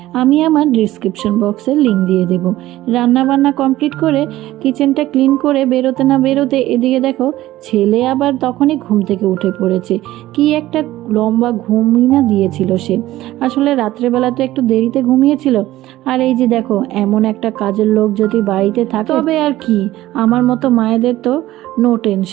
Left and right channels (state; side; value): quieter; left; 15.7 dB